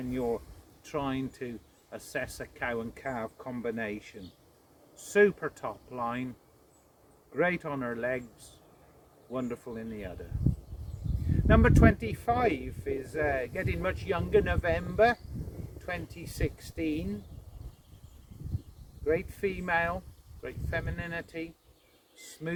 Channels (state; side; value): identical; both; correlation 1.00